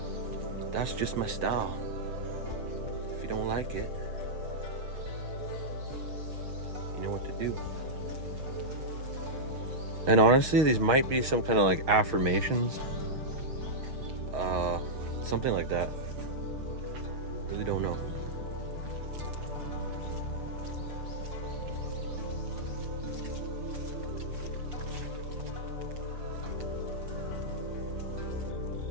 that's just my style. If you don't like it, you know what to do. And honestly, these might be some kind of like affirmations, something like that. Really don't know.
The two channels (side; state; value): left; late; 6.5 ms